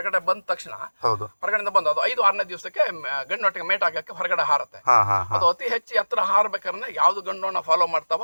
ಬಂದ ತಕ್ಷಣ, ಹೊರಗಡೆ ಬಂದು ಅದು 5-6ನೇ ದಿವಸಕ್ಕೆ ಗಂಡೊಟ್ಟಿಗೆ ಮೇಟ್ ಆಗಕ್ಕೆ ಹೊರಗಡೆ ಹಾರತ್ತೆ. ಅದು ಅತಿ ಹೆಚ್ಚು ಎತ್ತರ ಹಾರ್ಬೇಕಾದ್ರೆ ಯಾವ್ದು ಗಂಡೋಣ ಫಾಲೋ ಮಾಡ್ತಾವ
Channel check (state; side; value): inverted; both; correlation -1.00